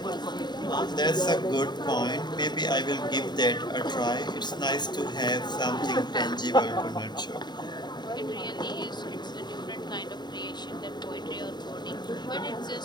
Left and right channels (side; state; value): right; late; 0.21 ms